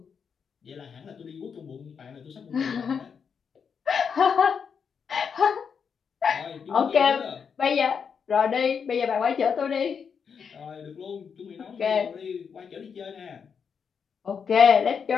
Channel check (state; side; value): quieter; right; 6.5 dB